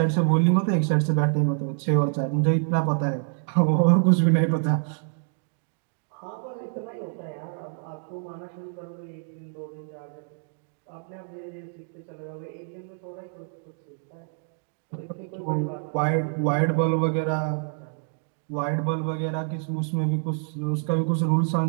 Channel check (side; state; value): left; silent; 60 dB below the other